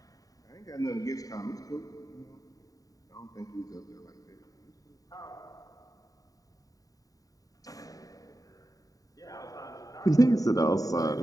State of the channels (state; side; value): late; right; 0.17 ms